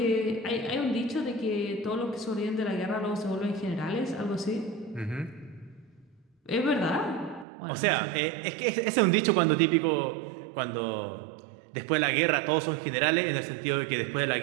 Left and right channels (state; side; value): drops out; left; at 7.5 s